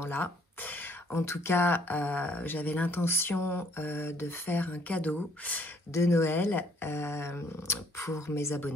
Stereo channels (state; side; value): normal; both; correlation 0.64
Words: En tout cas, j'avais l'intention de faire un cadeau de Noël pour mes